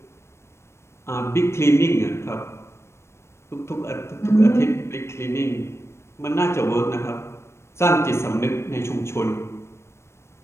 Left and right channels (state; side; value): late; right; 0.13 ms